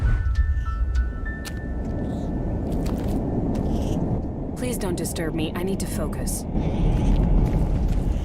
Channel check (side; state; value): both; identical; correlation 1.00